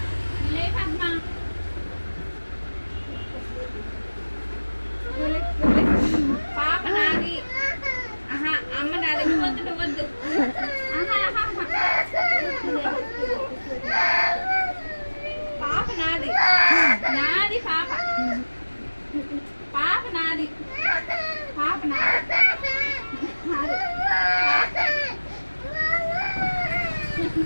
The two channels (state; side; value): inverted; both; correlation -1.00